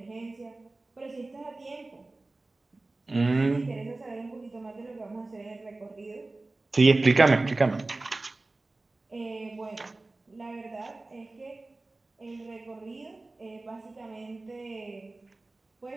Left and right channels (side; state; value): left; quieter; 3.1 dB